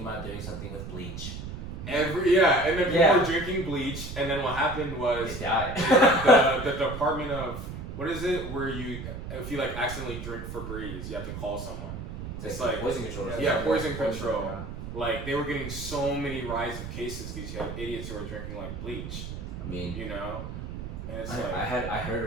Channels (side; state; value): right; noise; rumble, 8 dB below the sound